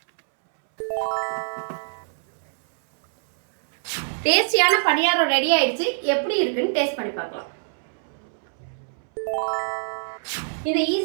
டேஸ்டியான பணியாரம் ரெடி ஆயிடுச்சு. எப்படி இருக்குன்னு டேஸ்ட் பண்ணி பார்க்கலாம். இந்த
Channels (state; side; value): silent; left; 62 dB below the other